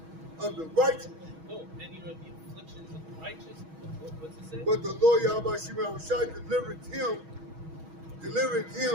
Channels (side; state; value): left; late; 6.2 ms